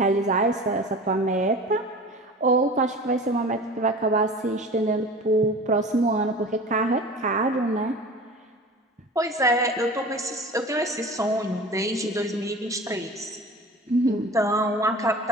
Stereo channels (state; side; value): normal; both; correlation 0.38